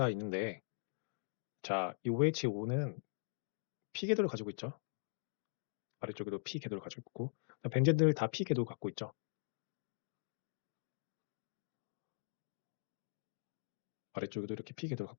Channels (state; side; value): silent; right; digital silence